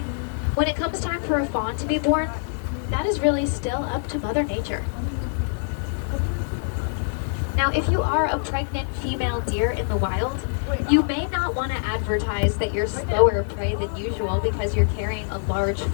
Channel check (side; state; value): right; silent; digital silence